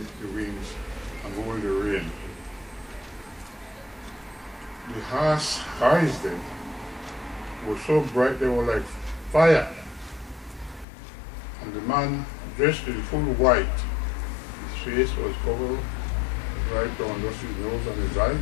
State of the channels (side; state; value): right; drops out; at 10.9 s